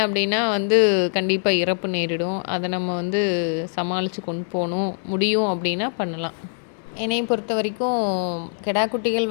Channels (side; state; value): right; silent; digital silence